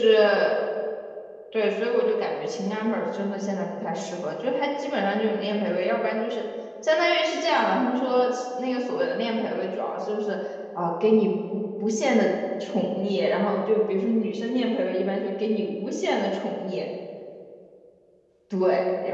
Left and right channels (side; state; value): both; identical; correlation 1.00